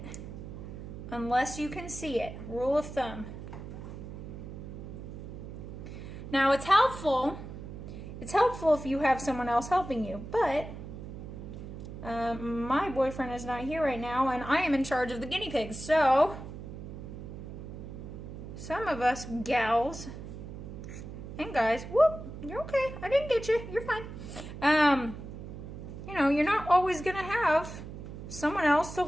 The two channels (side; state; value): right; noise; hum, 10 dB below the sound